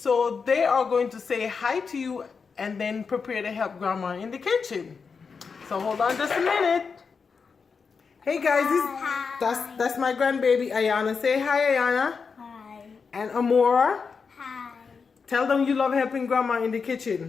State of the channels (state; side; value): quieter; right; 5.4 dB